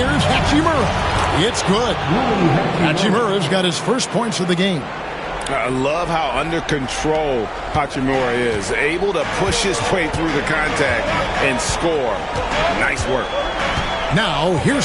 Hachimura. It's good. Hachimura's got his first points of the game. I love how under control Hachimura is. Able to push his way through the contact and score. Nice work. Now,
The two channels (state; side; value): identical; both; correlation 1.00